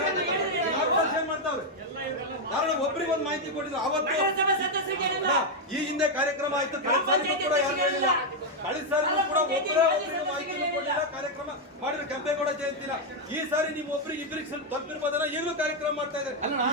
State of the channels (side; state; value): both; normal; correlation 0.01